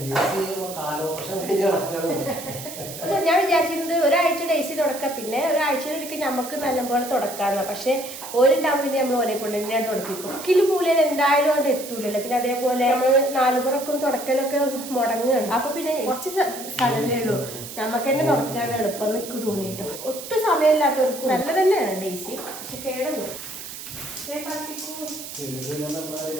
ഞാൻ വിചാരിച്ചിരുന്നത് ഒരാഴ്ച ഡേസി തുടക്കാം, പിന്നെ ഒരാഴ്ചയിലൊരിക്കൽ നമുക്ക് നല്ലപോലെ തുടക്കാമെന്ന. പക്ഷെ ഓരുണ്ടാകുമ്പോൾ പിന്നെ നമ്മൾ ഓലെ കൊണ്ട് തന്നെയാണ് തുടപ്പിക്കും. ഒക്കിലും മൂലയിൽ എന്തായാലും അത് എത്തൂലല്ലോ. പിന്നെ അതേപോലെ നമ്മൾ 4 പുറക്കും തുടക്കലൊക്കെ മുടങ്ങുകയാണ്. അപ്പൊ പിന്നെ കുറച്ച് സ്ഥലമേ ഉള്ളൂ, നമുക്ക് തന്നെ തുടക്കാണ് എളുപ്പം നിൽക്ക് തോന്നിയിട്ടു. ഒട്ടും സമയമില്ലാത്തവർക്ക് നല്ല തന്നെയാണ് ഡേസി, പക്ഷെ കേടുന്നു.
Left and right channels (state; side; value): noise; right; hiss, 11 dB below the sound